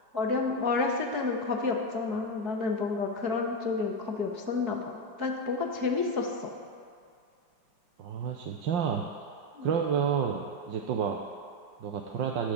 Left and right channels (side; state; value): left; late; 4.6 ms